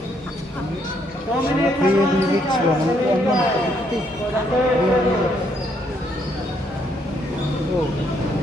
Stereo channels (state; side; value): normal; both; correlation 0.72